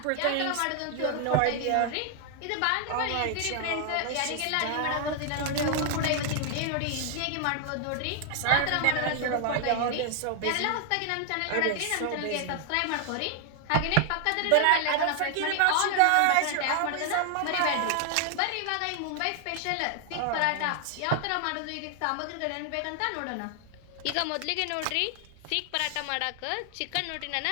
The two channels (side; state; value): both; different; correlation 0.00